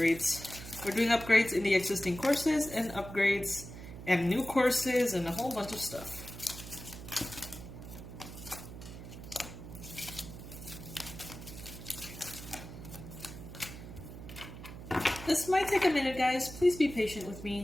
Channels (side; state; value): right; noise; hum, 12 dB below the sound